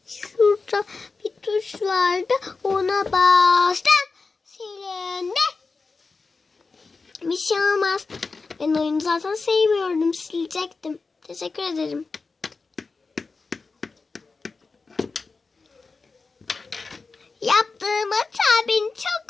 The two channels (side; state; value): right; quieter; 4.2 dB